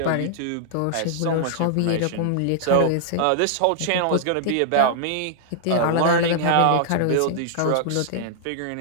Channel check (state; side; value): different; both; correlation -0.01